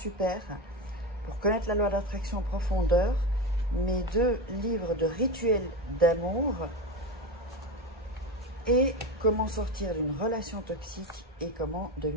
pour connaître la loi d'attraction en profondeur. Mes 2 livres de rituels d'amour et comment sortir d'une relation toxique et comment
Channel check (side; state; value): both; normal; correlation 0.20